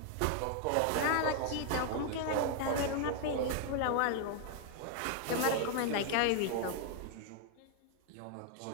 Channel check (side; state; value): both; different; correlation 0.00